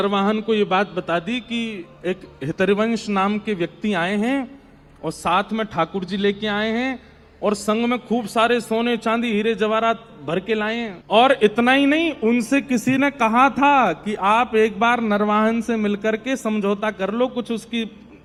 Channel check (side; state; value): both; identical; correlation 1.00